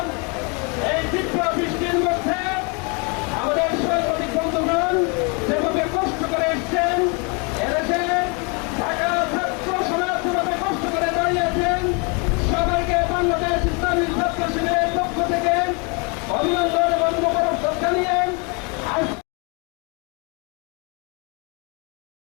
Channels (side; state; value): right; quieter; 33.0 dB